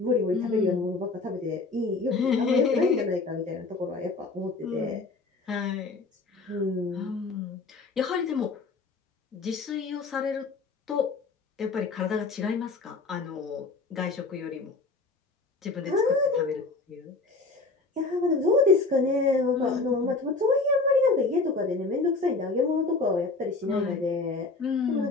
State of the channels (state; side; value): quieter; right; 3.8 dB